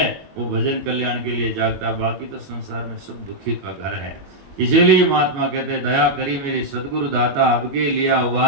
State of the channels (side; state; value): left; late; 21 ms